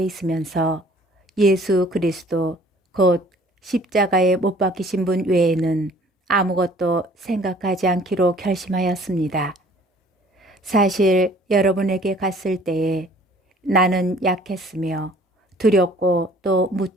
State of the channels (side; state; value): both; normal; correlation 0.54